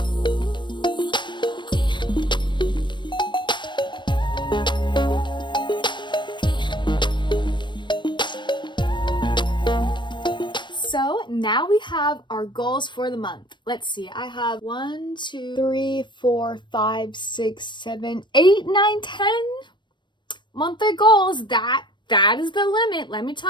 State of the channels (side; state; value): right; late; 0.22 ms